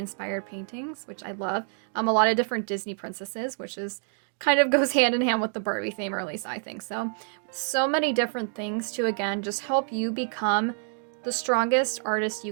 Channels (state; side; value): silent; left; 56 dB below the other